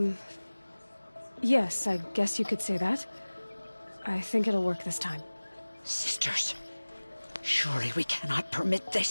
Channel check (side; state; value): both; inverted; correlation -1.00